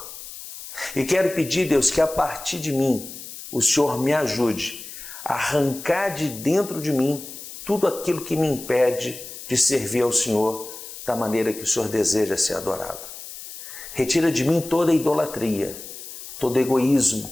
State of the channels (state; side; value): noise; left; hiss, 12 dB below the sound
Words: E quero pedir, Deus, que a partir de mim, o Senhor me ajude a arrancar de dentro de mim tudo aquilo que me impede de servir ao Senhor da maneira que o Senhor deseja ser adorado. Retira de mim toda idolatria, todo egoísmo,